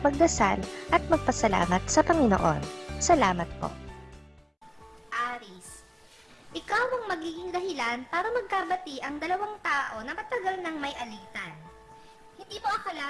magdasal at magpasalamat sa Panginoon. Salamat po. Aries, ikaw ang magiging dahilan para magkabati ang dalawang tao na matagal nang may alitan. Hindi mo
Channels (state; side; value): identical; both; correlation 1.00